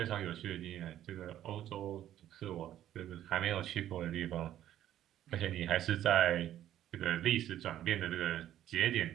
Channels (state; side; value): quieter; left; 12.0 dB